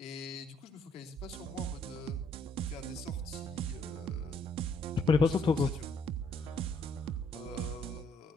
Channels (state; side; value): normal; both; correlation 0.67